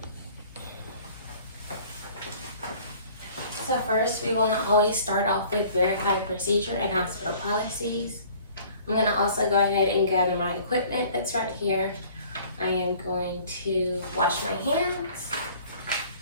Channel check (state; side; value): inverted; both; correlation -0.52